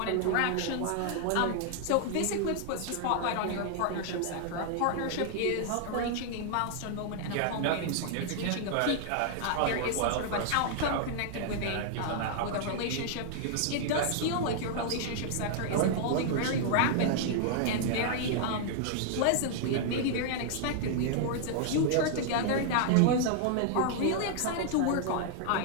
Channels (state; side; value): different; both; correlation -0.01